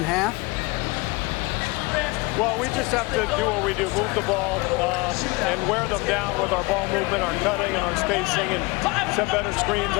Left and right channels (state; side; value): quieter; right; 24.9 dB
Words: half? Well, we just have to do what we do, move the ball and wear them down with our ball movement, our cutting, and our spacing, and set better screens,